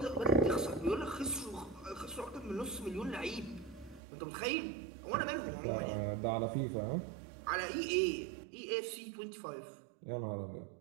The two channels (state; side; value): drops out; left; at 4.0 s